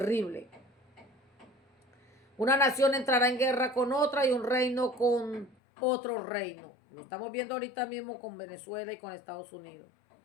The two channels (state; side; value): drops out; right; at 5.6 s